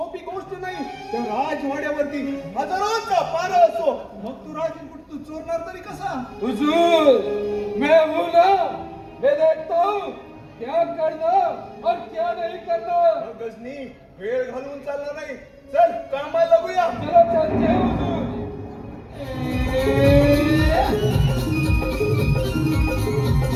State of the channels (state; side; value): identical; both; correlation 1.00